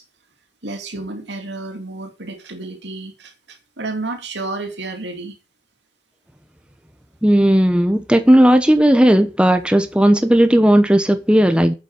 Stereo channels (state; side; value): normal; both; correlation 0.94